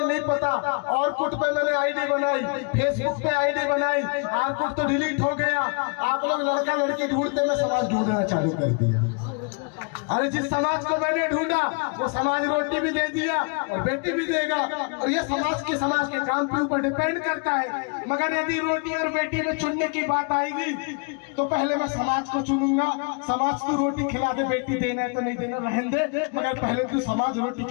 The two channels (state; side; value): quieter; right; 36.4 dB